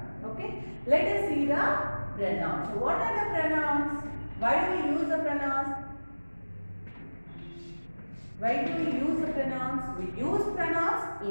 Okay. Let us see the pronouns. So what are the pronouns? Why do we use the pronouns? Why do we use the pronouns? We use pronouns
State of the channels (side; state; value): both; inverted; correlation -1.00